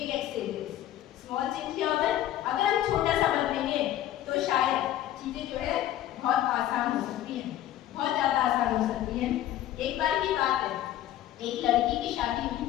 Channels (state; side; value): quieter; right; 12.9 dB